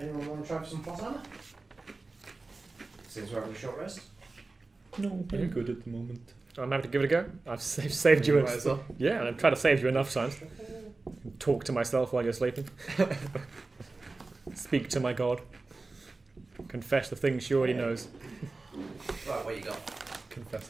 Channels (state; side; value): quieter; left; 3.5 dB